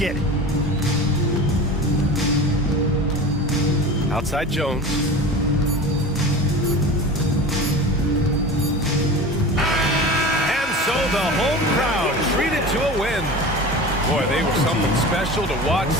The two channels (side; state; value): both; normal; correlation 0.34